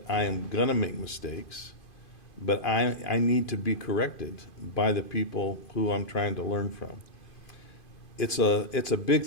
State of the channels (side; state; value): right; late; 2.5 ms